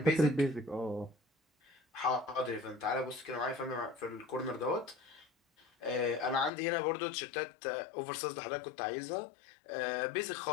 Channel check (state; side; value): drops out; right; at 6.5 s